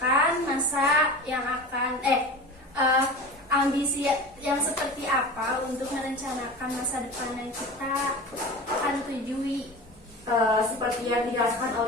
masa yang akan ambisi yang seperti apa untuk merencanakan masa depan yang kita akan tujui? Seperti yang dijelaskan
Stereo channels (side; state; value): both; normal; correlation 0.33